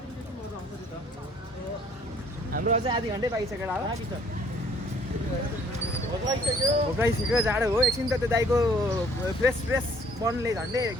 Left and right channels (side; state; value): both; normal; correlation 0.59